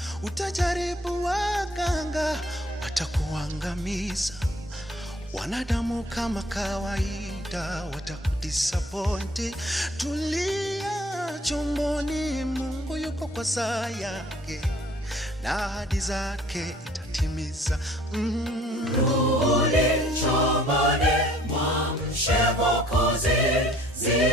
Utajaribu waganga, watakuangamiza. Wanadamu kama kawaida, watakudisappoint. Tulia chomboni, Mungu yuko kwa saa yake, na ahadi zake itatimiza. Rudi chomboni, mwamshe Mwokozi,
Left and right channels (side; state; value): both; normal; correlation 0.56